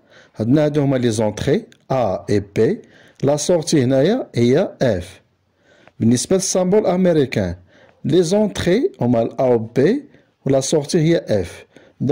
عندنا هادو هما لي زونتري A et B، لا سورتي هنايا هي F. بالنسبة للسامبول أمريكان لي زونتري هما ال A و B ولا سورتي هي F.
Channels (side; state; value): both; identical; correlation 1.00